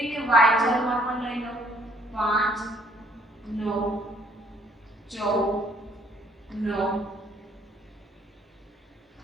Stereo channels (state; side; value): normal; both; correlation 0.64